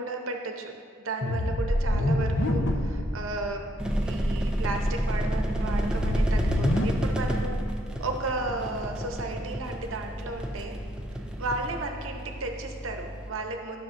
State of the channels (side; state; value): both; normal; correlation 0.71